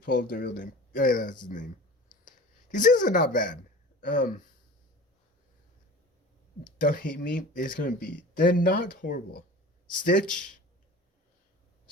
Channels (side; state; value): both; normal; correlation 0.39